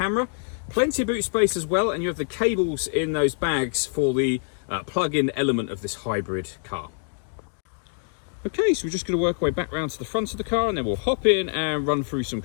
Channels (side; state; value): right; silent; 62 dB below the other